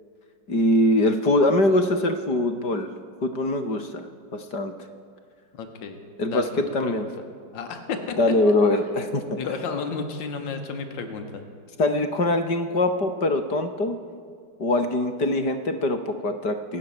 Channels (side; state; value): right; late; 5.1 ms